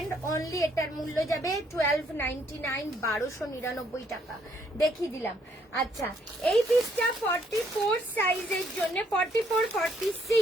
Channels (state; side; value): normal; both; correlation 0.68